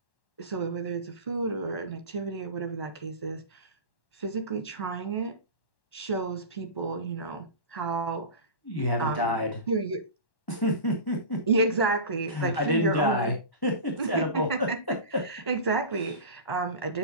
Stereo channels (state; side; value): late; right; 1.1 ms